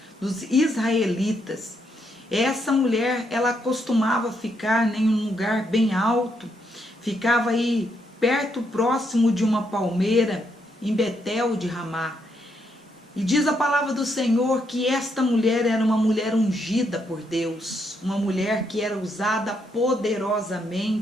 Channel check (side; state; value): both; normal; correlation 0.77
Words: israelitas. Essa mulher, ela costumava ficar em um lugar bem alto, ficava aí perto, próximo de uma palmeira, em Betel de Ramá. E diz a palavra do Senhor que esta mulher era uma mulher ungida por Deus, uma mulher que era usada